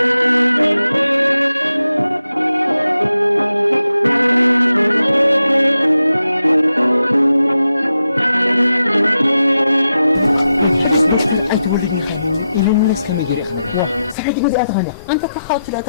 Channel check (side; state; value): both; inverted; correlation -0.89